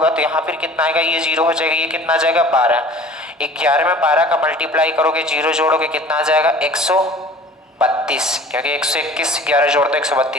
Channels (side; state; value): both; normal; correlation 0.45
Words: तो यहाँ फिर कितना आएगा, ये 0 हो जाएगा, ये कितना आ जाएगा 12। 11 में 12 का मल्टीप्लाई करोगे, 0 जोड़ोगे, कितना आ जाएगा 132, क्योंकि 121 11 जोड़ दो